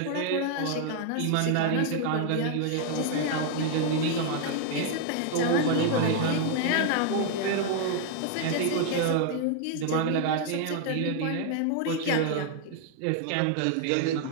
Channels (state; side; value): different; both; correlation 0.00